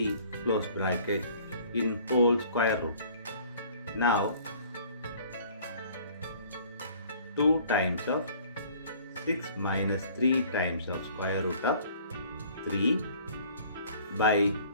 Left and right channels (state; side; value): inverted; both; correlation -0.53